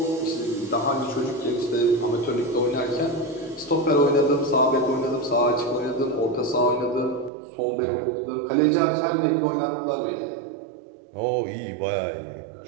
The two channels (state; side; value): drops out; left; at 7.3 s